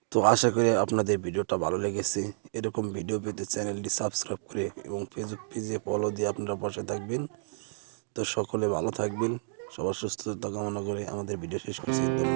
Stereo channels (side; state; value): left; silent; digital silence